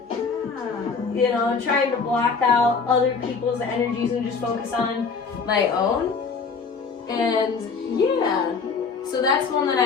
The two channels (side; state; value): right; quieter; 5.1 dB